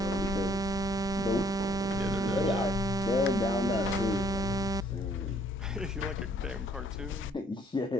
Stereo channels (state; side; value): normal; both; correlation 0.63